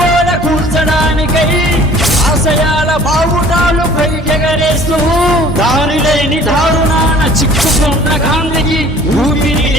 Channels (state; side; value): normal; both; correlation 0.50